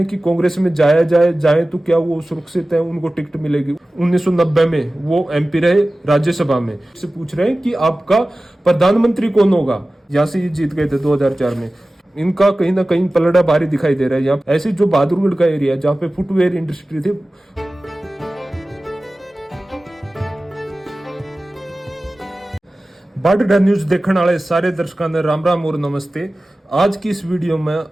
कि कांग्रेस में जाए तो क्या वो सुरक्षित है, उनको टिकट मिलेगी। 1990 में वो एमपी रहे राज्यसभा में, से पूछ रहे हैं कि आपका प्रधानमंत्री कौन होगा। यहाँ से ये जीत गए थे 2004 में। इनका कहीं ना कहीं पलड़ा भारी दिखाई दे रहा है। यहाँ ऐसे जो बहादुरगढ़ का एरिया जहाँ पे फुटवेयर इंडस्ट्री थी, बाडडा न्यूज देखने वाले सारे दर्शकों ने राम राम और नमस्ते। आज की इस वीडियो में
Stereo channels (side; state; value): both; normal; correlation 0.96